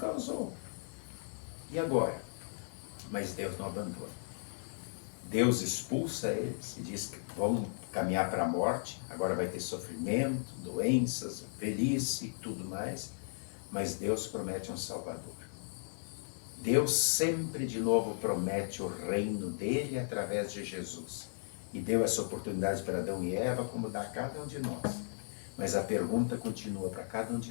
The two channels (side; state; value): right; silent; 54 dB below the other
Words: E agora? Mas Deus não abandona. Deus expulsa eles e diz que vão caminhar para a morte. Agora vai ter sofrimento, doenças, velhice e tudo mais. Mas Deus promete um Salvador. Deus sempre de novo promete o reino dele através de Jesus. E deu essa oportunidade para Adão e Eva, como dá a cada um de nós. Mas a pergunta continua para cada um de